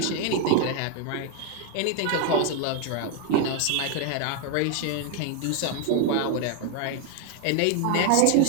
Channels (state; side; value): different; both; correlation 0.01